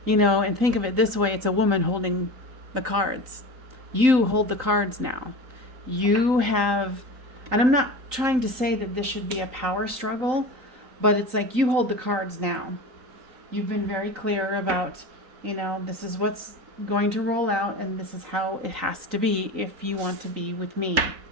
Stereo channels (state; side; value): late; left; 3.9 ms